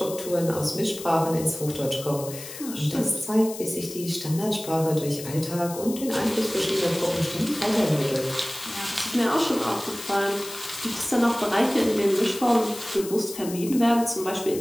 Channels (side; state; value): left; noise; hiss, 12 dB below the sound